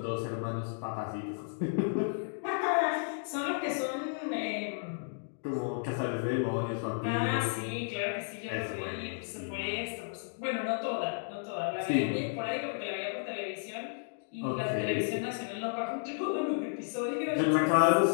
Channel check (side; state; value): right; silent; digital silence